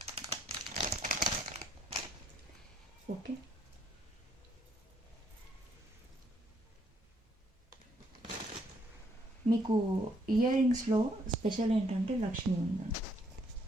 ఓకే, మీకు ఇయర్ రింగ్స్లో స్పెషల్ ఏంటంటే లక్ష్మి ఉందండి.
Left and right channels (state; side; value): normal; both; correlation 0.70